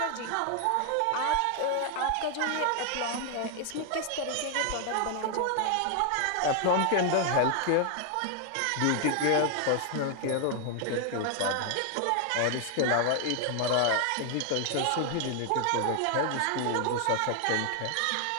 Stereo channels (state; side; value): different; both; correlation 0.00